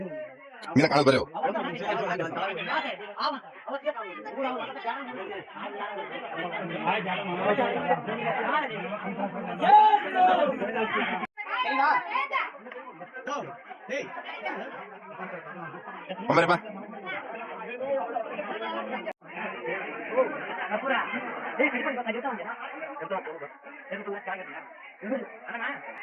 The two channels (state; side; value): identical; both; correlation 1.00